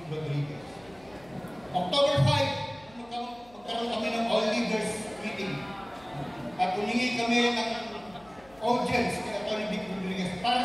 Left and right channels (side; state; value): left; noise; hum, 26 dB below the sound